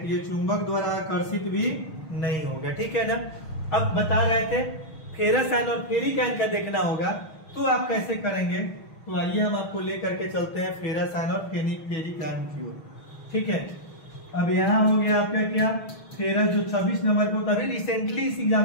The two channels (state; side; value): late; right; 6.3 ms